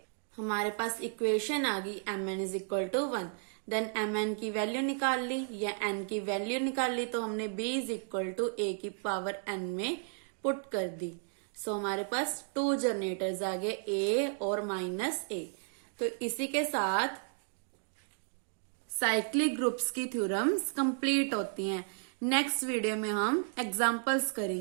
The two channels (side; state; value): left; silent; 55 dB below the other